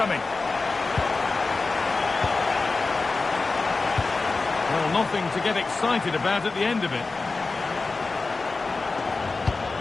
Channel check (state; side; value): quieter; right; 3.8 dB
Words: Well, nothing to get excited about at the end of it.